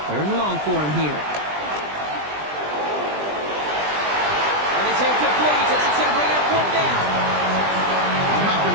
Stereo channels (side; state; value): left; late; 20 ms